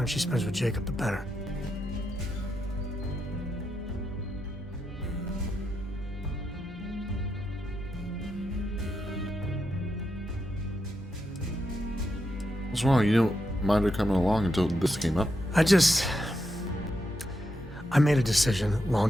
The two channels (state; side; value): normal; both; correlation 0.84